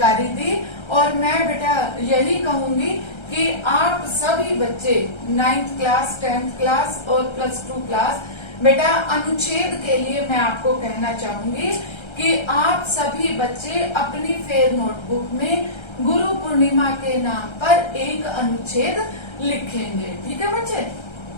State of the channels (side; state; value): right; late; 1.3 ms